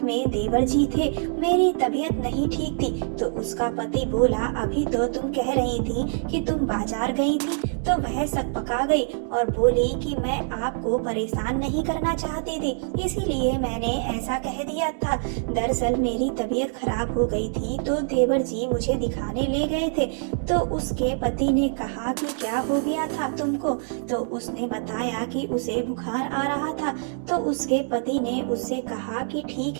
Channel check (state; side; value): silent; left; digital silence